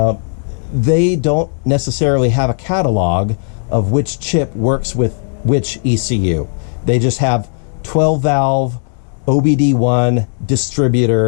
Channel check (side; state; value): right; silent; digital silence